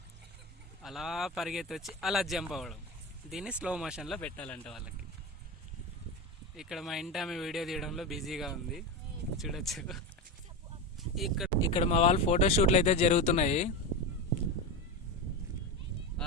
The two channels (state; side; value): normal; both; correlation 0.19